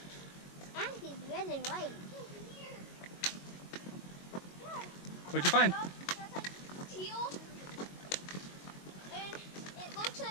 And he's red and white. What'd you find? Teal. And it looks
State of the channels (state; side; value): late; right; 22 ms